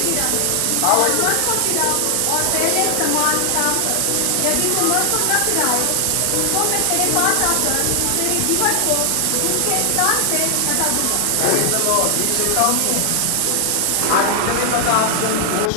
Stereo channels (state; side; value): different; both; correlation 0.00